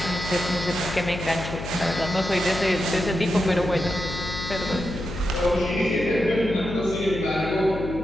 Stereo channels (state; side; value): noise; left; hum, 8 dB below the sound